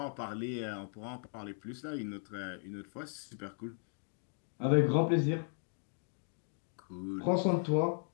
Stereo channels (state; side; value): silent; right; 53 dB below the other